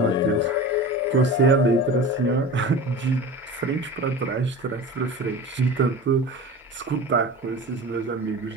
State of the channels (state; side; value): normal; both; correlation 0.33